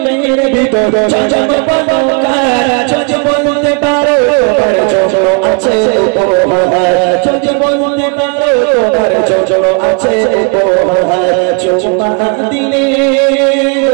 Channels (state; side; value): quieter; left; 35.1 dB